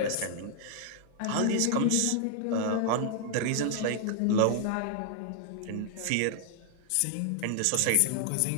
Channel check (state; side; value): different; both; correlation 0.00